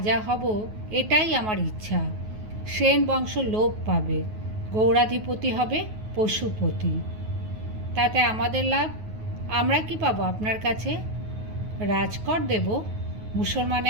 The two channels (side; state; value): left; late; 9.4 ms